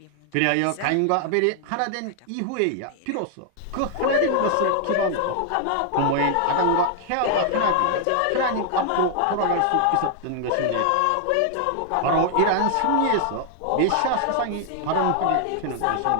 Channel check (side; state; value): both; different; correlation 0.00